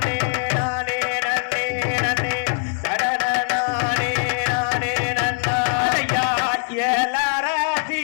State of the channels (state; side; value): silent; right; digital silence